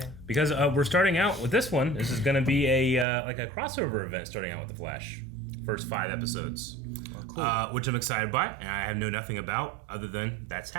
Because we're starting out with this one. This is going to be a like a crossover event starting out with The Flash. First 5 episodes. Well, cool. Which I'm excited by, and I know nothing about other than that's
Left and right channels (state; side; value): drops out; left; at 3.1 s